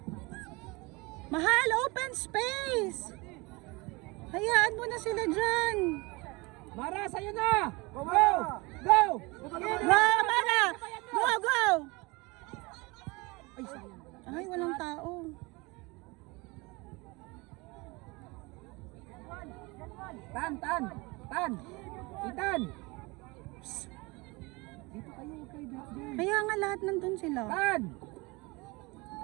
Mahal, open space. Hayaan mo na sila dyan. Mara, sa'yo na! Go! Go! Go, Amara! Go, go! Ay, walang tao. Tan! Tan! Itan! Dito kayo, okay, Dwayne. Kaya nga lahat nandun sila. Tan!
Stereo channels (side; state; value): left; quieter; 25.3 dB